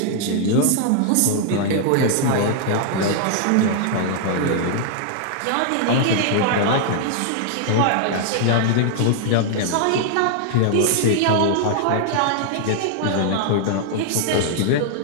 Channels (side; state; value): both; different; correlation 0.00